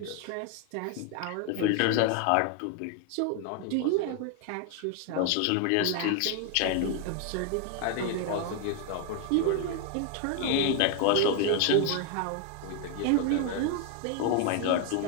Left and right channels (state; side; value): different; both; correlation 0.00